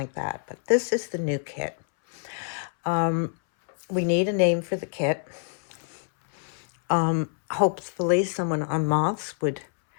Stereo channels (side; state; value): right; silent; 61 dB below the other